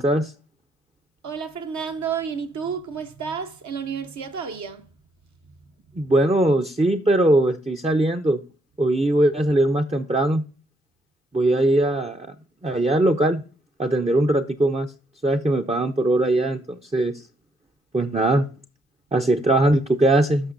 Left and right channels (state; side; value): normal; both; correlation 0.74